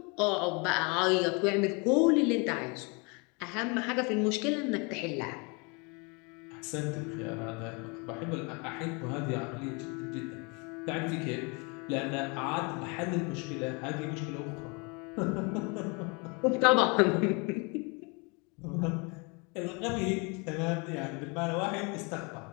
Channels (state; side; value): quieter; right; 31.1 dB